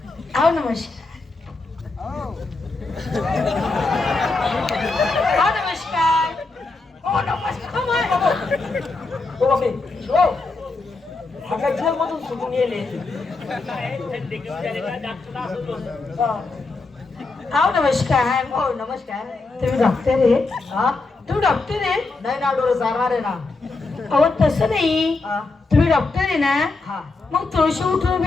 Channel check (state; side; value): quieter; right; 3.6 dB